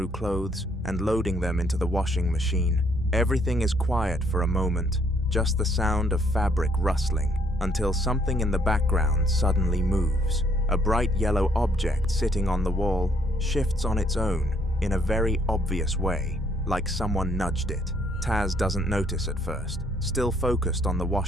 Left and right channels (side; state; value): both; normal; correlation 0.67